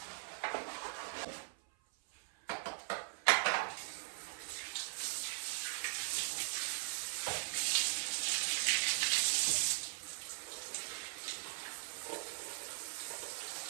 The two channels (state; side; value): silent; left; 51 dB below the other